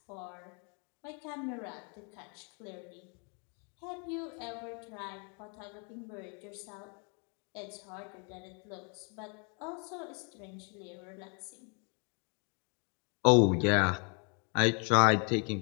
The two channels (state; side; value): quieter; right; 36.8 dB